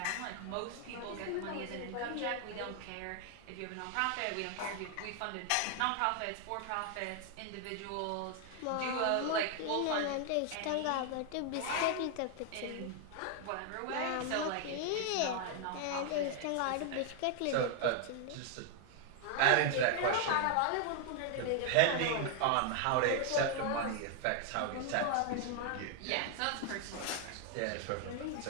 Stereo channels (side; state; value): both; different; correlation 0.00